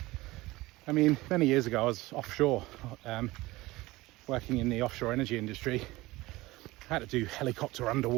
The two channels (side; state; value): left; quieter; 19.8 dB